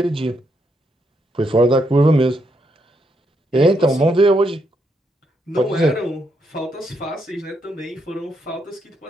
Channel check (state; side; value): normal; both; correlation 0.78